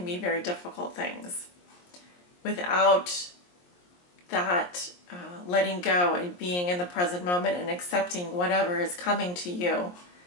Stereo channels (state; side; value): late; right; 23 ms